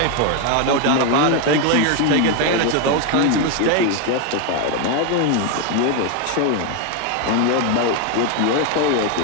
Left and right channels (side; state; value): both; different; correlation 0.01